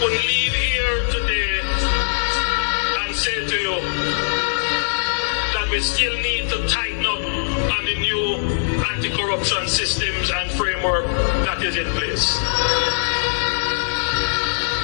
leave here today and say to you that we still need to tighten up on the new anti-corruption systems and framework that is in place.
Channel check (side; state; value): right; silent; digital silence